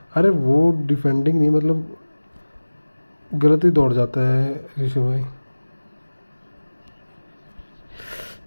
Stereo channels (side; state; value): both; inverted; correlation -1.00